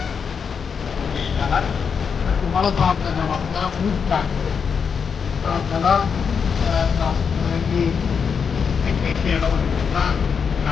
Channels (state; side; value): quieter; right; 6.3 dB